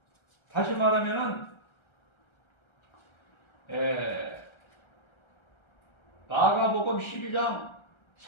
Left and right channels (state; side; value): late; right; 1.3 ms